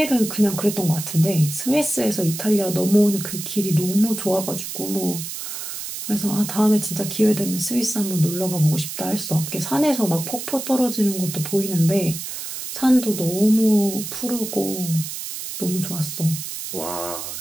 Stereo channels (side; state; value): right; noise; hiss, 7 dB below the sound